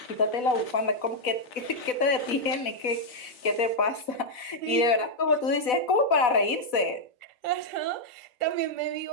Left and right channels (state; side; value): late; right; 4.0 ms